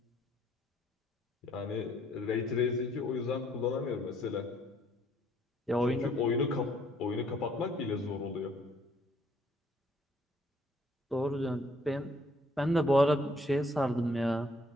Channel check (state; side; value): normal; both; correlation 0.65